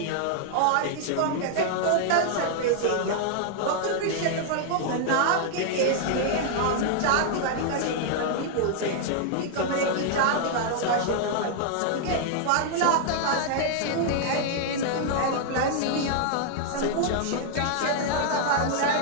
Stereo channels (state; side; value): different; both; correlation 0.00